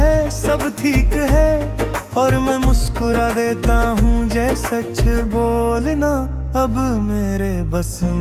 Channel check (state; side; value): identical; both; correlation 1.00